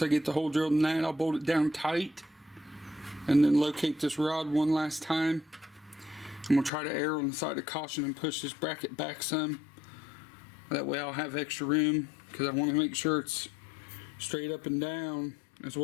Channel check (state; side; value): drops out; right; at 6.7 s